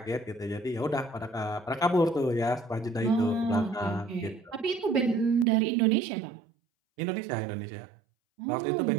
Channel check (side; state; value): left; drops out; at 5.5 s